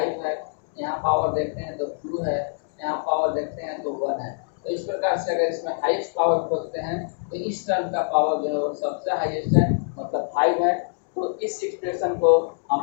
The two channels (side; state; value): right; silent; digital silence